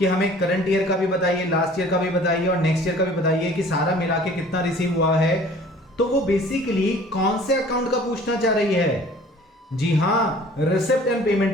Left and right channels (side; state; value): both; normal; correlation 0.49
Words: हमें करंट ईयर का भी बताइए, लास्ट ईयर का भी बताइए और नेक्स्ट ईयर का भी बताइए कि सारा मिला के कितना रिसीव हुआ है, तो वो बेसिकली कौन से अकाउंट का पूछना चाह रही है? जी हाँ, रिसिप्ट एंड